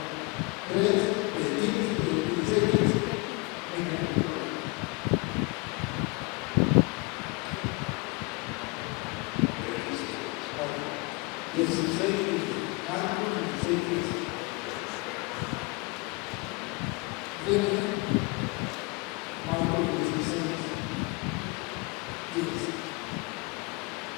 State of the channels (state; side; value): quieter; right; 27.2 dB